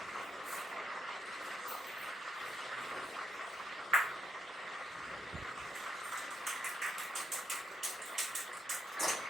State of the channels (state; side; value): normal; both; correlation 0.79